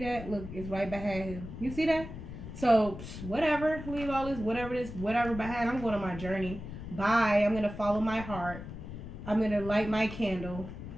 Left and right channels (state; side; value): noise; left; rumble, 10 dB below the sound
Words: Look, it's right behind him. You see that? So whatever, leave all this, whatever behind. I'm going on my journey. Bye. I'm going to follow my heart. I'm going to light my candle.